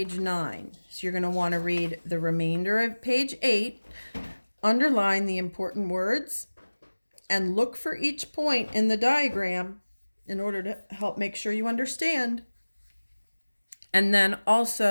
9. So you're going to want to read the remainder of page 8, underline the important words, and look for each point in the diagram in order to help make sure you understand. And then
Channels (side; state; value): both; inverted; correlation -1.00